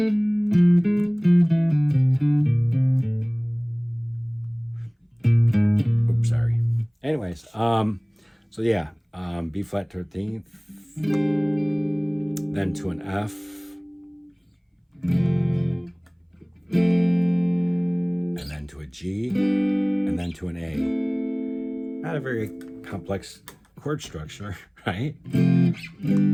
Oops, sorry. Anyways, so yeah, B flat 13th, then to an F, and then to a G, and then to an A. Not a very complex chord structure, right?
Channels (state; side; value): identical; both; correlation 1.00